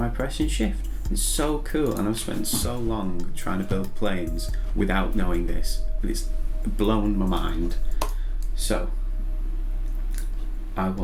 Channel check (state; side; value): identical; both; correlation 1.00